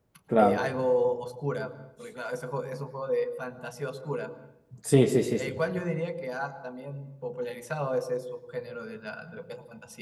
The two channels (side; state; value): both; identical; correlation 1.00